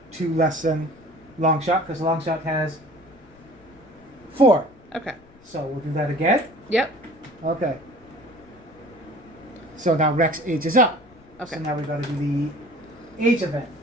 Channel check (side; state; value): left; noise; rumble, 27 dB below the sound